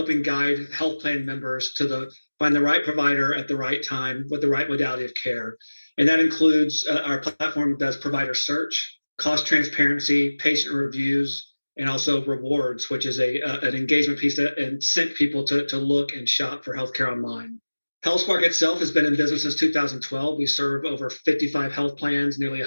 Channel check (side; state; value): both; inverted; correlation -1.00